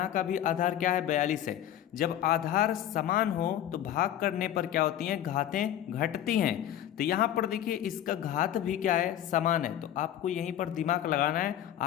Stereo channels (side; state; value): right; quieter; 11.3 dB